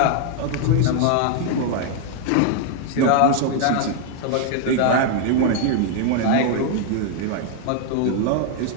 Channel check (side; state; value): both; different; correlation 0.00